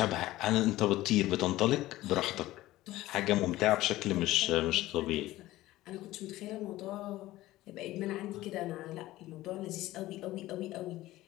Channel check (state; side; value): quieter; right; 16.6 dB